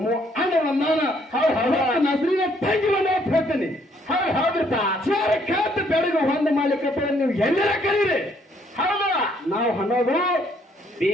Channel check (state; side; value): normal; both; correlation 0.67